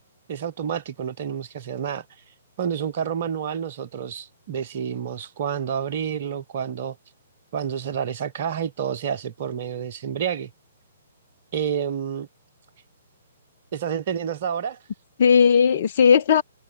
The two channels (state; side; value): inverted; both; correlation -0.65